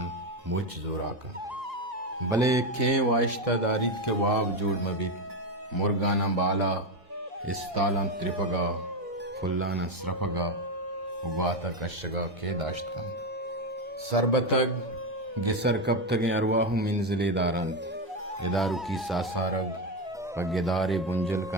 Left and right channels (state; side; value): normal; both; correlation 0.11